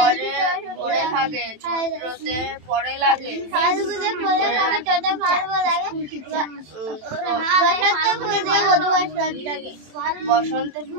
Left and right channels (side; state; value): left; late; 27 ms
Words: পরে লাগে বসন্ত